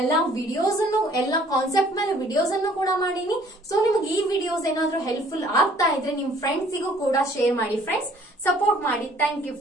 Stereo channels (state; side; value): normal; both; correlation 0.57